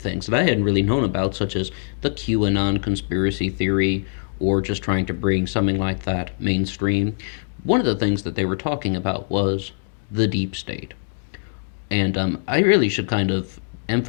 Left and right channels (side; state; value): right; silent; digital silence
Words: that I hadn't really known about, such as the QAnon conspiracy theory, or just trying to bring something like that mainstream. One of the things that they were talking about was the deep state. And I really should kind of